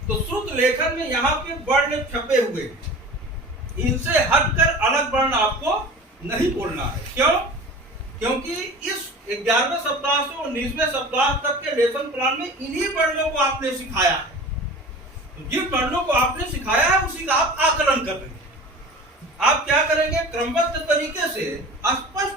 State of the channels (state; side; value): normal; both; correlation 0.38